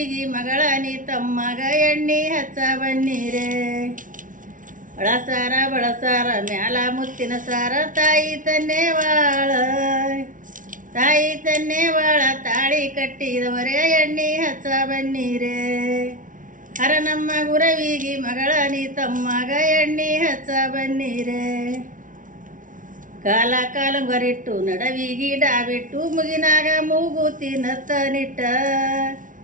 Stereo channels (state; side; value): late; left; 0.38 ms